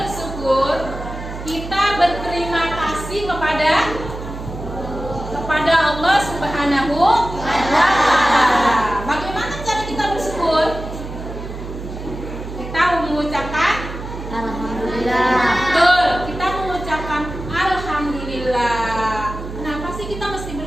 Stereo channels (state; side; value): noise; right; hum, 9 dB below the sound